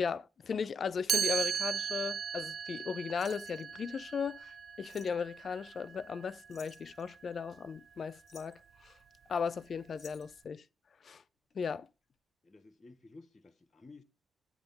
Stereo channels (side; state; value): both; normal; correlation 0.78